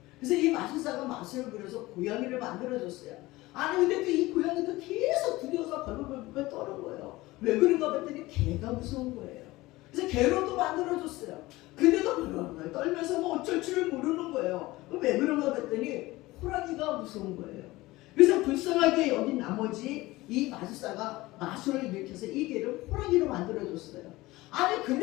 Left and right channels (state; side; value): quieter; right; 19.4 dB